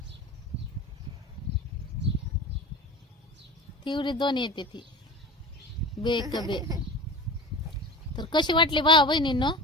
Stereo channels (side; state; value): both; normal; correlation 0.33